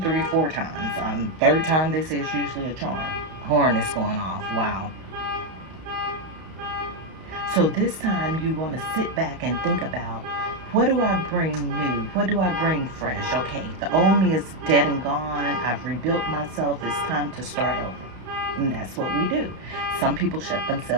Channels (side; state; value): left; late; 32 ms